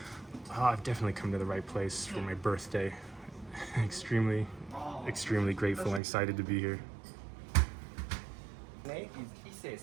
I've definitely come to the right place for my birthday. extremely grateful and excited to be here. Name is Ise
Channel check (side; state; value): left; drops out; at 6.0 s